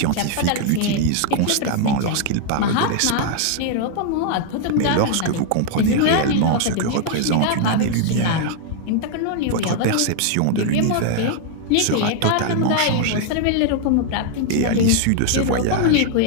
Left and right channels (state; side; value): different; both; correlation 0.00